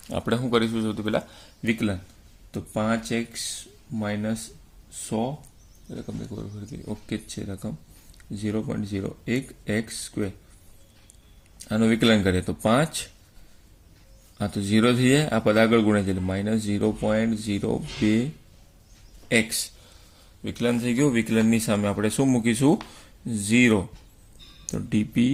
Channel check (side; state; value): both; identical; correlation 1.00